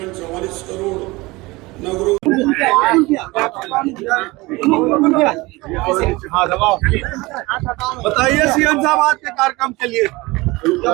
44 करोड़, नगरों बताइए सीएम साहब आज के कार्यक्रम के लिए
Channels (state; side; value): quieter; left; 22.3 dB